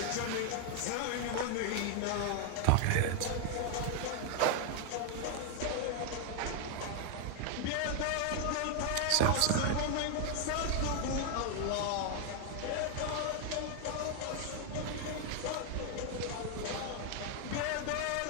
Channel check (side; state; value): both; different; correlation 0.00